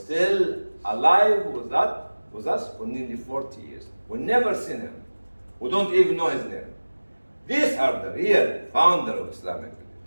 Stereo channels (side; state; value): both; inverted; correlation -1.00